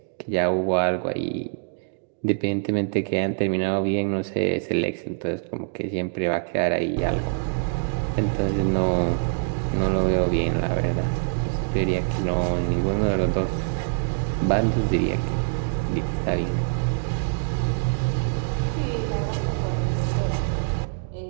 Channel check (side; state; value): left; silent; digital silence